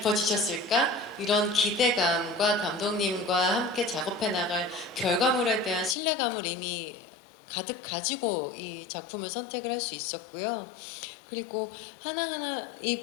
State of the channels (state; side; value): drops out; right; at 6.0 s